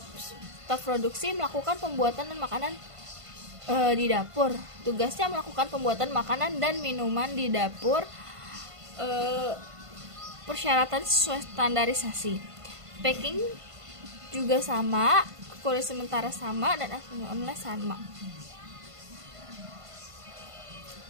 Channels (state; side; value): late; left; 1.5 ms